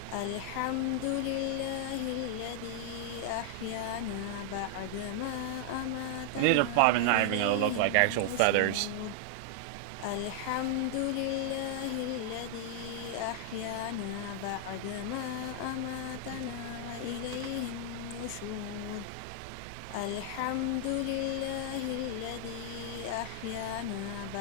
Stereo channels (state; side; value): different; both; correlation -0.01